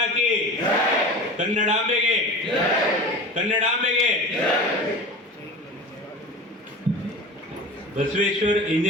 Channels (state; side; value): normal; both; correlation 0.33